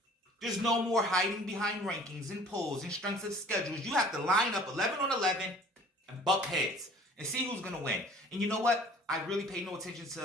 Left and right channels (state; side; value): normal; both; correlation 0.50